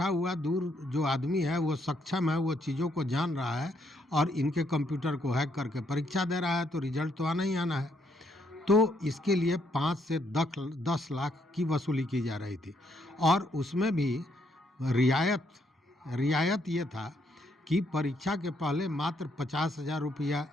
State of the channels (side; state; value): both; normal; correlation 0.73